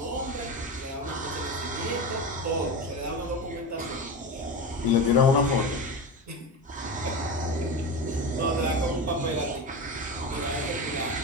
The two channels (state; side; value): normal; both; correlation 0.23